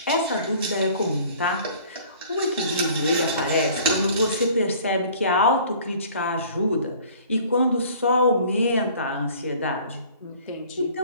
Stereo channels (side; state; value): both; inverted; correlation -0.51